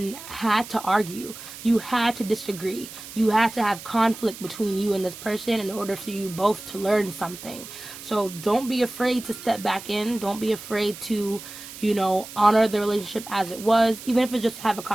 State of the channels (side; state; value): right; noise; hiss, 14 dB below the sound